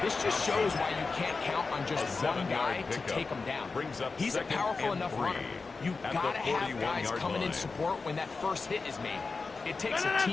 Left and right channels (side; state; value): right; quieter; 4.2 dB